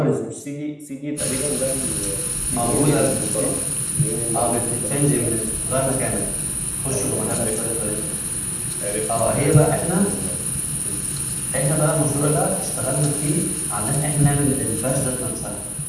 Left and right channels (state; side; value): identical; both; correlation 1.00